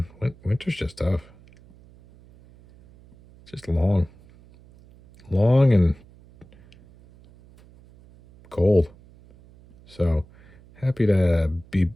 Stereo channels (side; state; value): right; noise; hum, 25 dB below the sound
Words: Winter's just tough. It's just long and cold. So happy to be